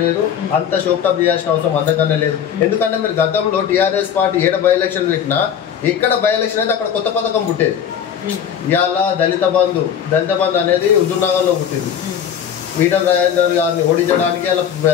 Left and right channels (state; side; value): quieter; right; 8.6 dB